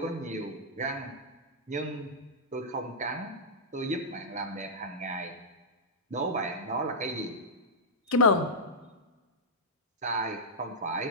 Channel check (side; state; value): both; normal; correlation -0.11